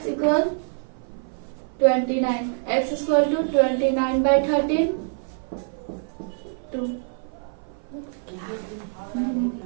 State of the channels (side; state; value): left; silent; 55 dB below the other